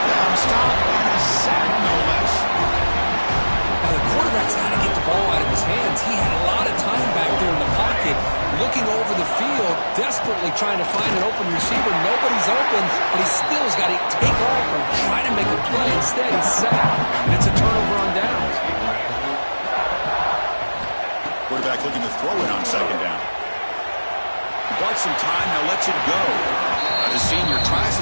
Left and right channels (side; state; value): both; inverted; correlation -1.00